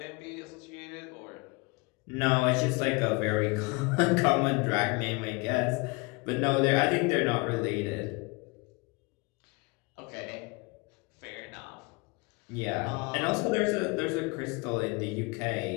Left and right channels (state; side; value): quieter; right; 27.2 dB